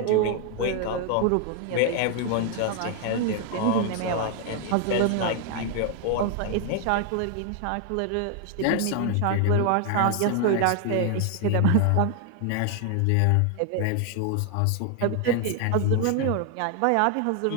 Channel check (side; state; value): both; different; correlation 0.00